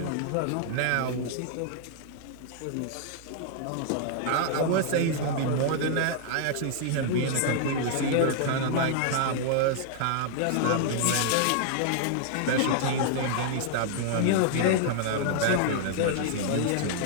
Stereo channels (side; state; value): both; different; correlation -0.01